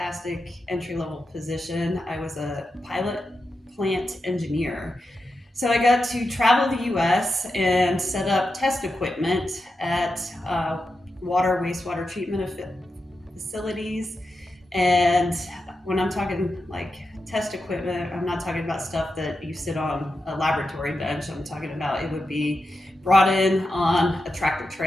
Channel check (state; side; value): normal; both; correlation 0.89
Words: entry level position. I was a pilot plant engineer. So I got to travel the US and set up test equipment at water, wastewater treatment facilities. And when I'm talking like test equipment, I'm not talking about stuff that you sit on a laboratory bench. I'm talking about it would be brought in on a tractor